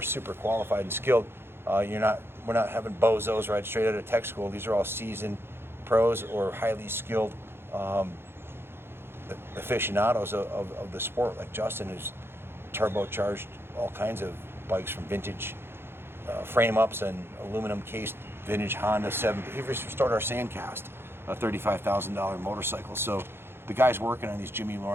super qualified and skilled. We're not having bozos right straight out of tech school. These are all seasoned pros or highly skilled aficionados of the sport, like Justin, who's turbocharged all kinds of bikes from vintage frame ups and aluminum cased vintage Honda 7. He restored our Sandcast, a $35,000 motorcycle. So the guys working on these, Jimmy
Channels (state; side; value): late; left; 0.11 ms